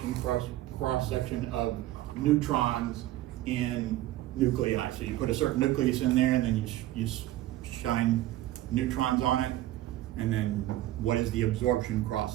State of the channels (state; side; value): quieter; left; 15.0 dB